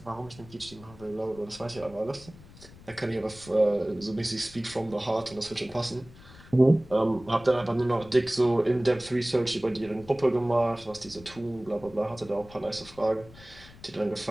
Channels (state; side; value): noise; left; rumble, 21 dB below the sound